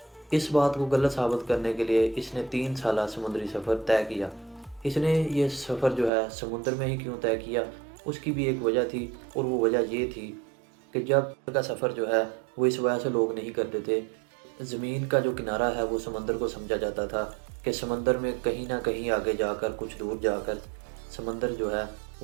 اس بات کو غلط ثابت کرنے کے لیے اس نے 3 سالہ سمندری سفر طے کیا۔ اس نے یہ سفر جو ہے سمندر میں ہی کیوں طے کیا، اس کی بھی ایک وجہ تھی، اور وہ وجہ یہ تھی کہ جب کا سفر جو ہے وہ اس وجہ سے لوگ نہیں کرتے تھے۔ زمین کا جو کنارہ ہے وہ سمندر کو سمجھا جاتا تھا کہ سمندر میں کہیں نہ کہیں آگے جا کر، کچھ دور جا کر سمندر جو ہے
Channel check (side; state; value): left; drops out; at 6.1 s